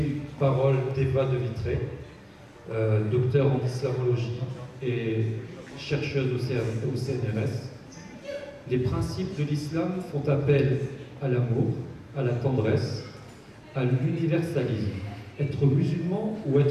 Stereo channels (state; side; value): identical; both; correlation 1.00